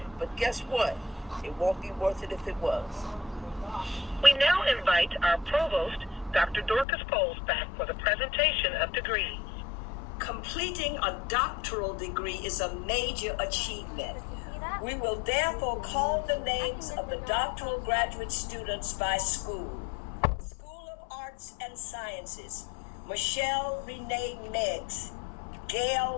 But guess what? It won't be worth it if it was. We now invite our provost, Dr. Dorcas Poles, back for the presentation of degrees. Completing a doctoral degree is a major achievement. We will therefore call the names of the doctoral graduate students by school. School of Arts and Sciences, Michelle Renee Meggs,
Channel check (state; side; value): drops out; right; at 6.9 s